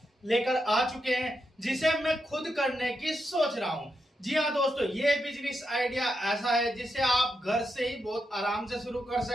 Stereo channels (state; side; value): normal; both; correlation 0.84